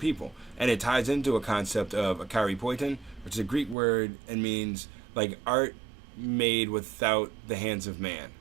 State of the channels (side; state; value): left; drops out; at 3.8 s